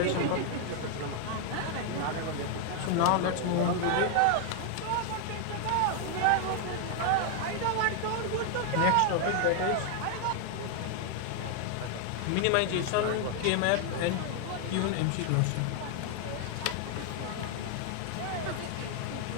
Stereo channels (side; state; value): both; different; correlation 0.00